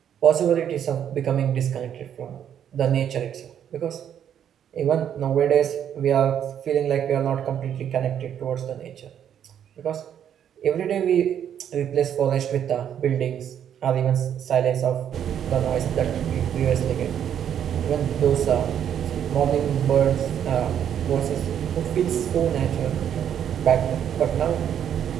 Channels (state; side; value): quieter; left; 9.3 dB